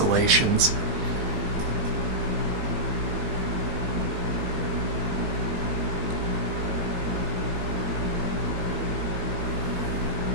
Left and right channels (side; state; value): left; late; 20 ms